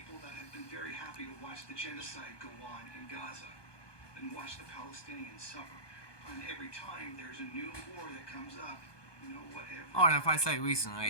that have been very happy to watch the genocide go on in Gaza and watch the Palestinians suffer. And every time there's a new war that comes up, you know, whatever. Oh, and if I say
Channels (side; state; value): right; late; 1.2 ms